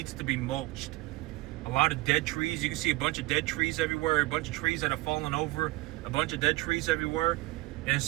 to be mulched. A lot of dead trees. You can see a bunch of dead trees everywhere. A bunch of trees that have fallen over. A bunch of dead trees everywhere. And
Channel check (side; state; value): left; quieter; 19.9 dB